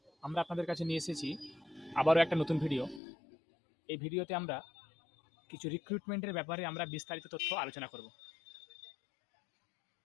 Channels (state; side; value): drops out; right; at 3.0 s